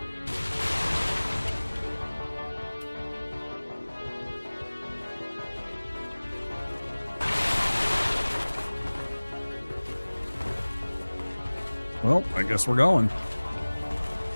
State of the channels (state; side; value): inverted; both; correlation -1.00